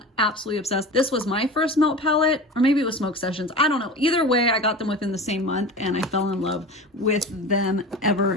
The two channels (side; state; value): both; normal; correlation 0.33